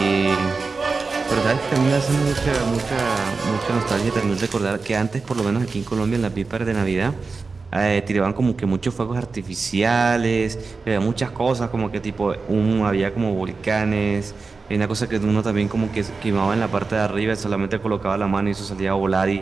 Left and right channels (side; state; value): left; quieter; 4.3 dB